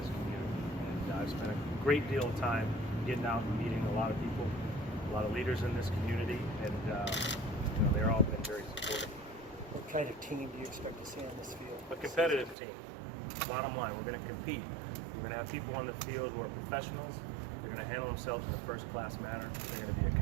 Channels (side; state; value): left; drops out; at 12.6 s